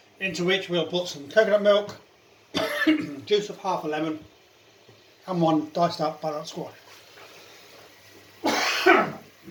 Into which we'll put some coconut milk, juice of half a lemon, and 1 diced up butternut squash.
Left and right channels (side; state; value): both; identical; correlation 1.00